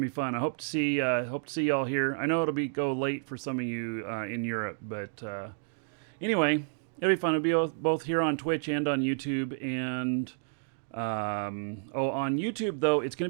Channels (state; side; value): silent; left; digital silence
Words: be fun. I hope to see y'all here. I know it'll go late for some of you in Europe, but anyway, it'll be fun. It'll be both here on Twitch and on YouTube. And on YouTube though, it's gonna